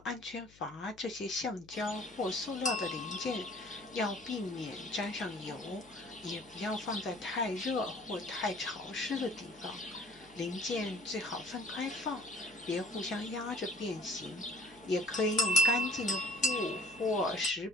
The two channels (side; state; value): left; noise; hum, 25 dB below the sound